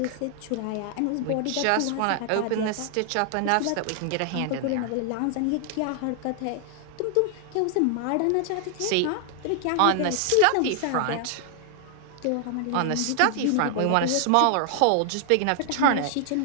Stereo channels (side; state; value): both; different; correlation 0.00